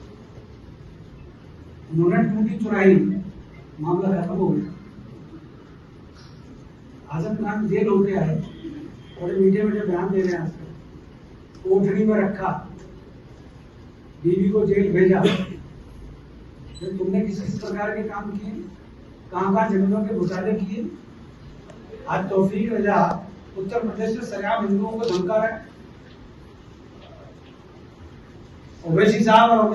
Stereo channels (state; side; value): identical; both; correlation 1.00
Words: उन्होंने टूटी चुराई, मामला खत्म हो गया। आजम खान जेल होते आए, बड़े मीडिया में जो बयान दे रहे हैं, कोठरी में रखा, बीवी को जेल भेजा। तुमने किस प्रकार के काम किए, कहां जमीनों के घोटाले किए। आज तौफीक रजा उत्तर प्रदेश में सरेआम हिंदुओं को धमका रहा है। ओवैसी साहब और